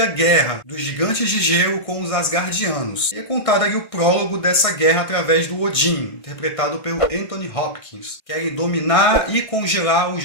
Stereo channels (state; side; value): late; right; 1.6 ms